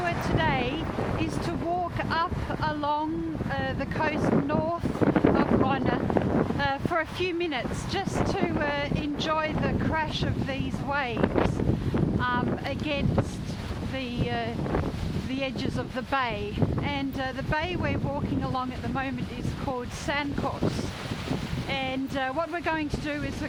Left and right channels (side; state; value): both; identical; correlation 1.00